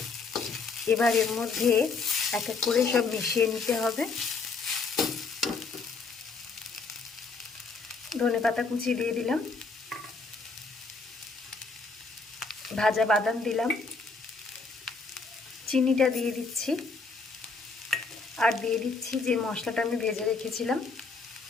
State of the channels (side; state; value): right; quieter; 4.3 dB